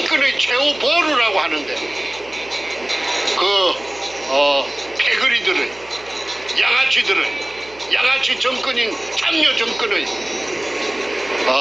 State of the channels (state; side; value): noise; right; hum, 23 dB below the sound